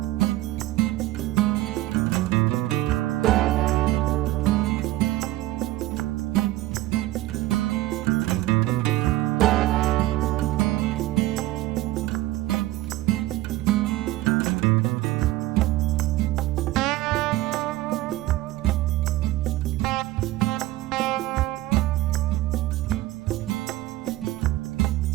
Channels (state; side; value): quieter; left; 16.6 dB